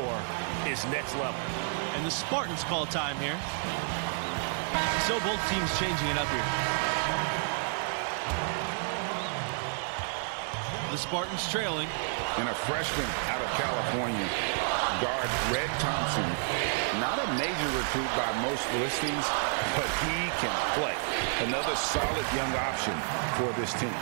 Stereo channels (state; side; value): silent; left; 58 dB below the other